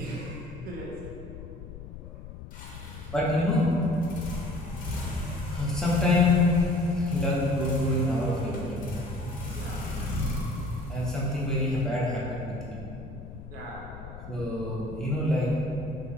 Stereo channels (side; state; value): left; noise; rumble, 13 dB below the sound